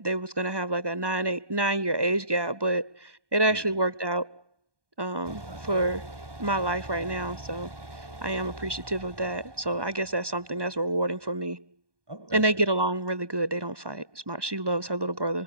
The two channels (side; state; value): left; late; 1.2 ms